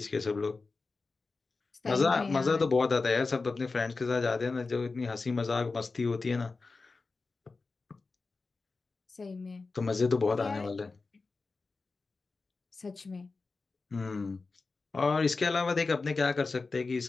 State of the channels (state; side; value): quieter; right; 4.0 dB